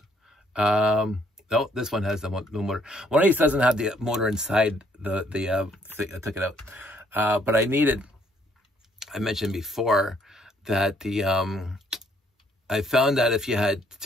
No, this one has no motor. One of these doesn't have the motor inside the thing. I took it out. But I mentioned before that I found that if you had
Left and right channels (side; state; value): both; normal; correlation 0.66